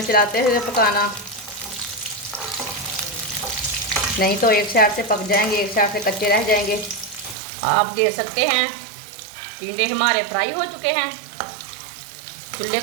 चलाते हुए पकाना, नहीं तो एक साइड से पक जाएंगे, एक साइड से कच्चे रह जाएंगे। आप दे सकते हैं टिंडे हमारे फ्राई हो चुके हैं। चूल्हे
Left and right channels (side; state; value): left; drops out; at 7.4 s